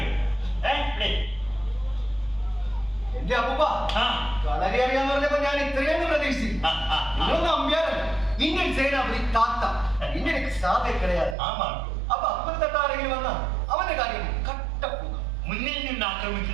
എന്റെ അപ്പൂപ്പ വളരെ അറിയാന്ന് പറഞ്ഞപ്പോ ഞാൻ ഇത്രയും പ്രതീക്ഷിച്ചു. നമ്പ്യാരല്ല, ഇന്ത്യൻ സേനാപതി താത്ത, ഇന്ത്യൻ സാധ കിടയാതെ. അപ്പൊ അപ്പൻ തട്ട ആരെങ്കിലും വന്നാ അവന്റെ കാര്യം കട്ടപ്പൂക. മുന്നിൽ നിന്ന്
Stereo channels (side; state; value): left; drops out; at 11.4 s